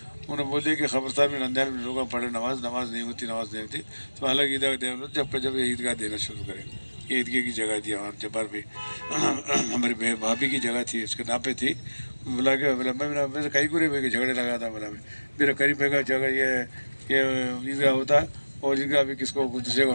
उन्होंने बोले कि खबरदार में रमजान में लोग पढ़े, नमाज नहीं होती, तो अलग ईदगाह दे, जब ये ईदगाह देना शुरू करें। ये ईदगाह की जगह थी वहाँ जब्बार पे, हमारी भाभी की जगह थी, उसके नाम पे थी। बोला मैं कहीं को नहीं झगड़े लगा था, बोला मेरा करीब का जगह ये ईदगाह होता और ईदगाह अभी किसको दूसरे का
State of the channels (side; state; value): both; inverted; correlation -1.00